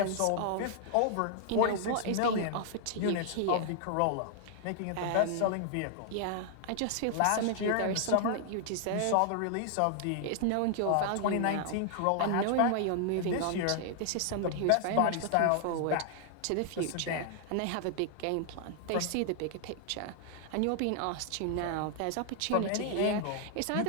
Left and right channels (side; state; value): both; different; correlation 0.00